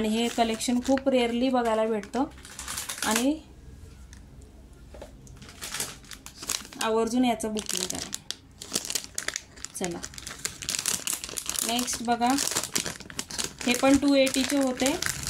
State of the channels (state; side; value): identical; both; correlation 1.00